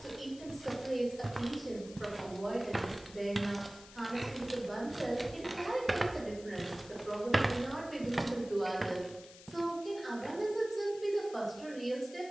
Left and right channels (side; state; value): left; noise; hiss, 18 dB below the sound